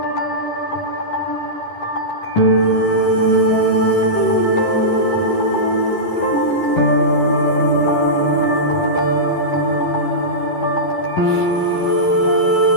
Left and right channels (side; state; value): right; late; 11 ms